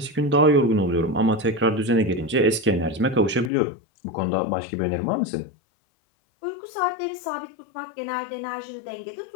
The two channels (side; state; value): right; drops out; at 3.5 s